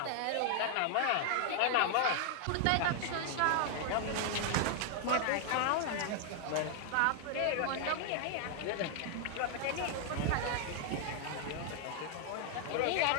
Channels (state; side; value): different; both; correlation 0.00